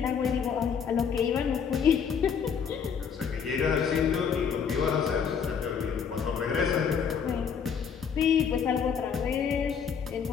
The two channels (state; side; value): quieter; right; 6.9 dB